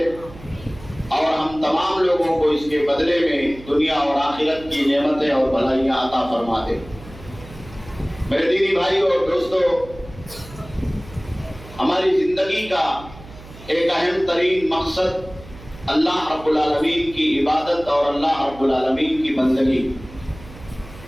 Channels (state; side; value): noise; right; hum, 18 dB below the sound